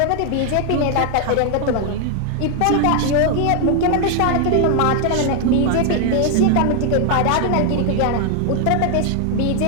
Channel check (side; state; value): both; different; correlation 0.00